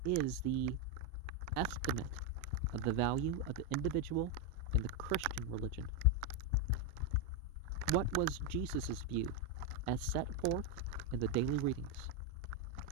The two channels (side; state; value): both; normal; correlation 0.04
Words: is the estimate of the value of the individual in the Christian religion? What was Jesus' view as set forth in the daily readings?